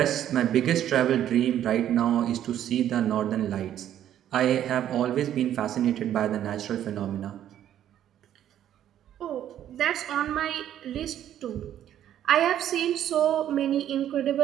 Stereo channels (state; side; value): quieter; left; 11.0 dB